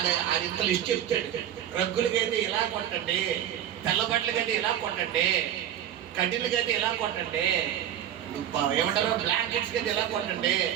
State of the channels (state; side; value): quieter; left; 10.7 dB